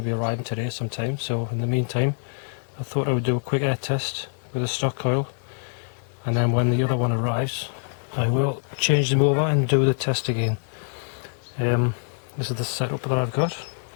be arriving today sometime, so in the meantime I thought I would do a quick air test with a stock coil, and then when the other one arrives I will change them over and do the test again. This is the setup that I've got.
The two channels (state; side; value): silent; right; digital silence